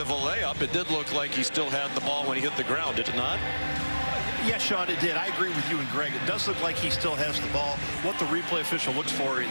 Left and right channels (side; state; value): both; inverted; correlation -1.00